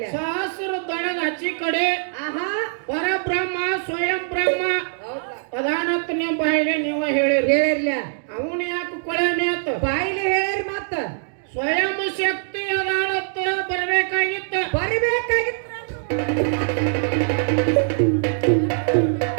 ಸಹಸ್ರ ದಳದ ಹಚ್ಚಿ ಕಡೆ ಪರಬ್ರಹ್ಮ ಸ್ವಯಂ ಬ್ರಹ್ಮ ಅದಾನತ್ ನೀವು ಬಾಯಿಲೆ ನೀವು ಹೇಳಿರ್ಲ. ಅವನು ಯಾಕೆ ಕೊಳೆನೆ ಅಂತ ಬಾಯಿಲೆ ಹೇಳಿರಿ. ಮತ್ತ ಸ್ವಯಂ ಶಕ್ತಿ ಅದಾನತ್ ಬರಬೇಕಾಗಿತ್ತು.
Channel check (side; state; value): left; silent; digital silence